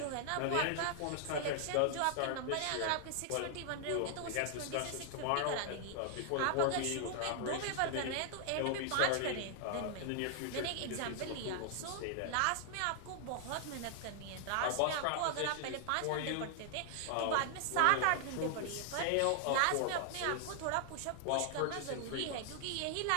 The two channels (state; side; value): different; both; correlation 0.00